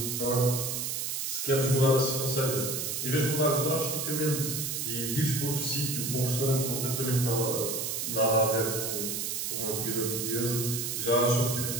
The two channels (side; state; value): right; noise; hiss, 2 dB below the sound